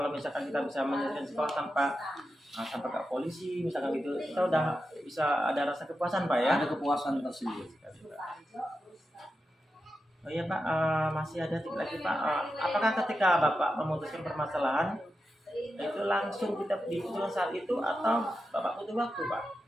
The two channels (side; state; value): both; normal; correlation 0.89